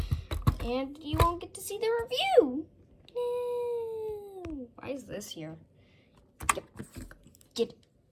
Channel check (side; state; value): both; identical; correlation 1.00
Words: And you won't get to see the review. No. Why is this here? Get